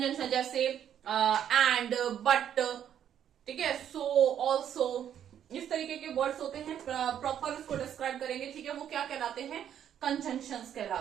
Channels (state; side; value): quieter; left; 9.7 dB